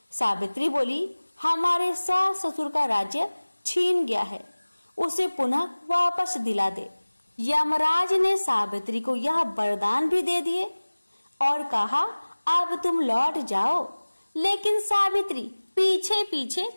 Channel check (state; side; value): inverted; both; correlation -1.00